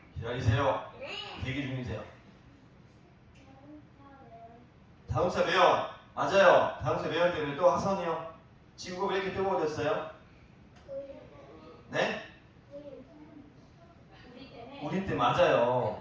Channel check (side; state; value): both; identical; correlation 1.00